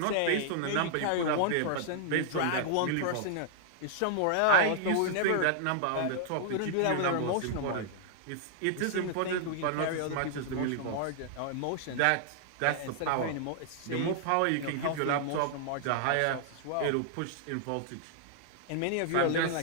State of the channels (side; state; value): both; different; correlation -0.01